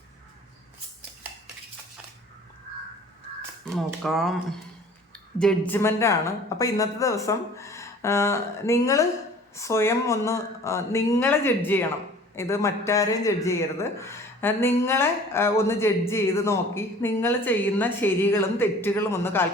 നോക്കാം, ജഡ്ജ്മെൻ്റാണ്. അപ്പോൾ ഇന്നത്തെ ദിവസം നിങ്ങൾ സ്വയം ഒന്ന് നിങ്ങളെ ജഡ്ജ് ചെയ്യണം. ഇത് മറ്റാരെയും ജഡ്ജ് ചെയ്യരുത്. നിങ്ങളെ ഒന്ന് ജഡ്ജ് ചെയ്ത് നോക്കി നിങ്ങൾ ചെയ്യുന്ന ശരികളും തെറ്റുകളും ഒന്ന്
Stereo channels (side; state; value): both; normal; correlation 0.48